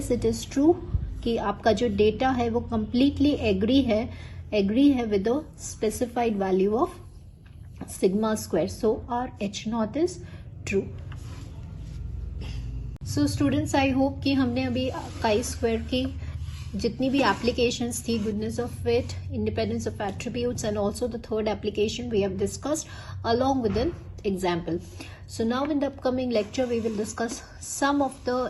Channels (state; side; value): identical; both; correlation 1.00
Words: इट इज ट्रू कि आपका जो डेटा है वो कंप्लीटली एग्री है with the specified value of sigma square, so our h0 is true. So students, I hope कि हमने अभी काई स्क्वायर की जितनी भी एप्लीकेशंस थी, goodness of fit, independence of attributes and also the third application we have discussed along with an example. So now in the upcoming lecture we will discuss some of the